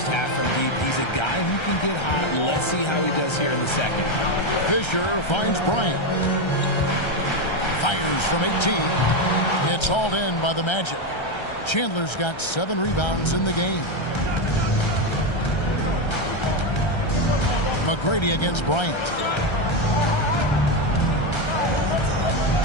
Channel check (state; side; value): late; right; 1.3 ms